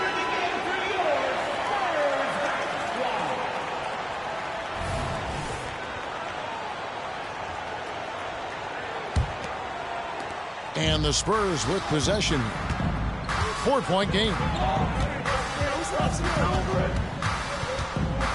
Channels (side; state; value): both; identical; correlation 1.00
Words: And the Spurs with possession. 4-point game.